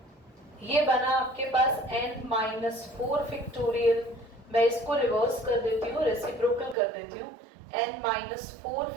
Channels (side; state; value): left; drops out; at 6.8 s